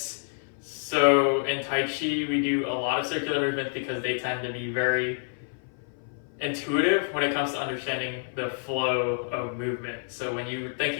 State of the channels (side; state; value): right; silent; 56 dB below the other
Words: So in Tai Chi, we do a lot of circular movements because they tend to be very intuitive when it comes to understanding the flow of movement. So when you're